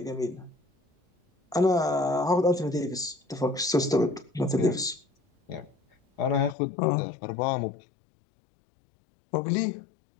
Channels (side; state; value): right; drops out; at 6.6 s